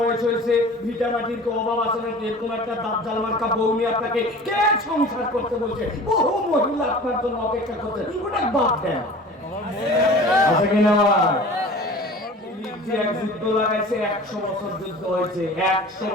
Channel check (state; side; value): normal; both; correlation 0.41